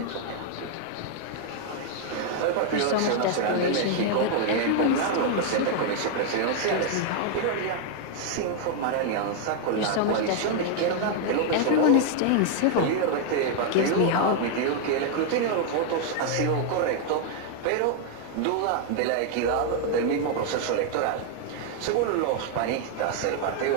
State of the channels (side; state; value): both; different; correlation 0.00